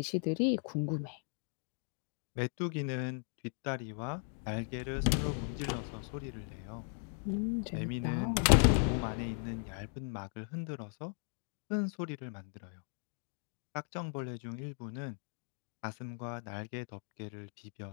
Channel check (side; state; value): right; silent; 53 dB below the other